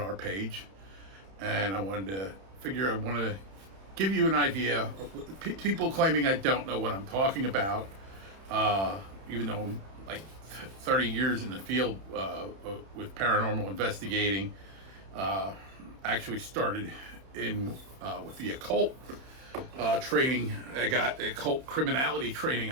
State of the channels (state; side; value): late; left; 31 ms